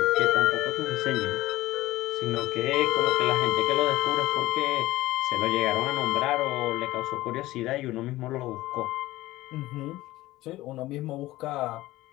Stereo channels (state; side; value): quieter; right; 17.4 dB